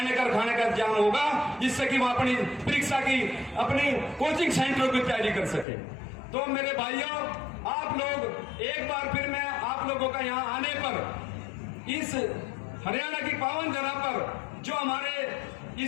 का खाने का इंतजाम होगा, जिससे कि वहां अपनी परीक्षा की, अपनी कोचिंग सेंटरों की तैयारी कर सके। तो मेरे भाइयों, आप लोग एक बार फिर मैं आप लोगों का यहाँ आने पर, इस हरियाणा की पावन धरा पर, जो हमारे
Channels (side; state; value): right; drops out; at 5.7 s